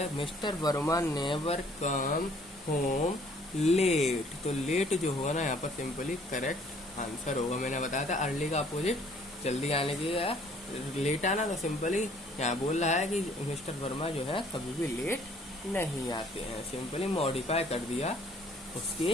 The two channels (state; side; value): normal; both; correlation 0.59